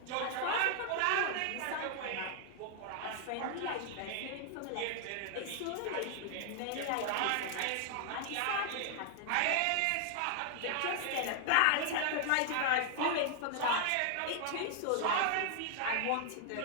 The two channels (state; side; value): different; both; correlation 0.00